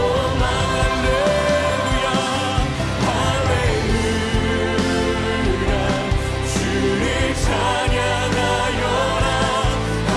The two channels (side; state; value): both; identical; correlation 1.00